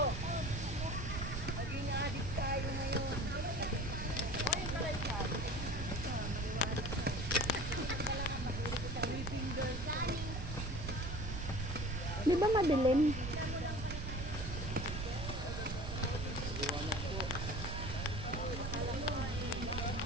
Di ba madilim?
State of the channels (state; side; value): noise; right; rumble, 4 dB below the sound